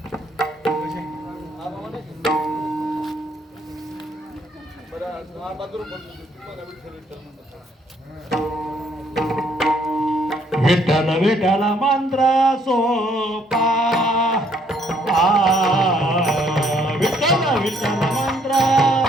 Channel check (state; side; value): normal; both; correlation 0.67